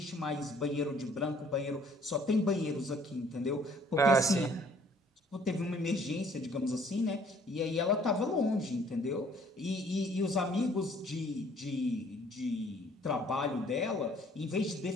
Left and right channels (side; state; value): both; normal; correlation 0.59